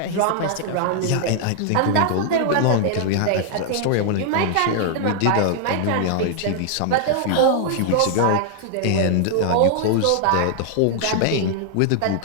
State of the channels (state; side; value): different; both; correlation -0.01